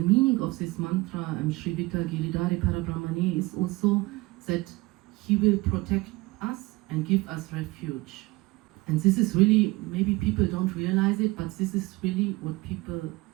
meaning of this mantra, Shri Vita Giridhari Parabrahmane, is also that he will protect us and give us refuge. And this is really, maybe people don't realize it, but this is really what people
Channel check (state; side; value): quieter; left; 21.7 dB